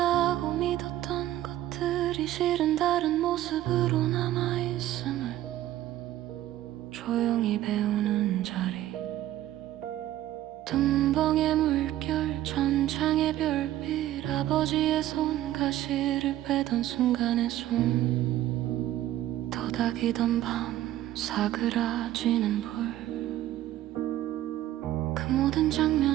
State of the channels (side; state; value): left; quieter; 13.9 dB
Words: 믿었던 것들이 실은 다른 모습으로 남아있음을 조용히 배우는 자리. tum벙의 물결 천창의 별빛 아버지의 손 가시를 빼던 순간의 숨 도닥이던 밤 사그라지는 불 그 모든